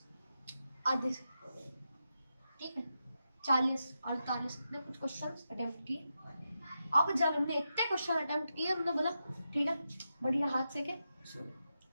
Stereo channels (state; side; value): inverted; both; correlation -0.87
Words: आधे से, ठीक है, 40-48 ने कुछ क्वेश्चन अटेम्प्ट किए। अब जब हमने इतने क्वेश्चन अटेम्प्ट किए, हमने बोला ठीक है बढ़िया, हाथ से के